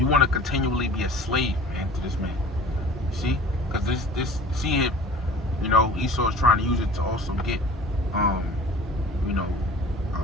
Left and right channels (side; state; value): both; normal; correlation 0.44